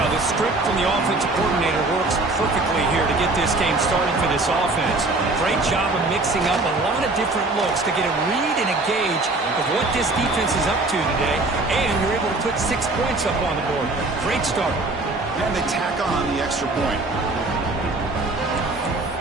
the script from the offensive coordinator works perfectly here to get this game started for this offense. Great job of mixing up a lot of different looks to get a read and a gauge of what this defense is up to today, and you're able to put 6 points up on the board. Great start. And they tack on the extra point.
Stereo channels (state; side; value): quieter; left; 3.1 dB